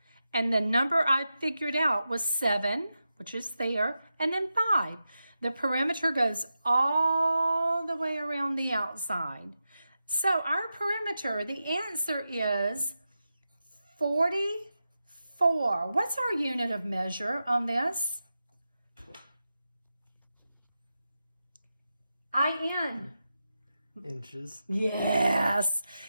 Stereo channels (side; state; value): both; inverted; correlation -0.90